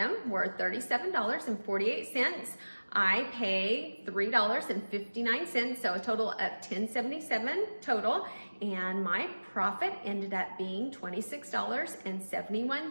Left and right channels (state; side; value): inverted; both; correlation -1.00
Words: were $37.48. I paid $3.59, so a total of $10.77 total. And my profit ended up being